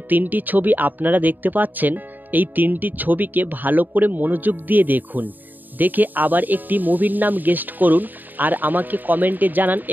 তিনটি ছবি আপনারা দেখতে পাচ্ছেন, এই তিনটি ছবিকে ভালো করে মনোযোগ দিয়ে দেখুন। দেখে আবার একটি মুভির নাম গেস্ট করুন আর আমাকে কমেন্টে জানান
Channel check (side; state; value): left; late; 0.088 ms